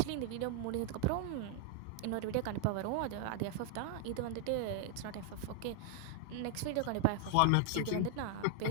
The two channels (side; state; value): both; different; correlation 0.00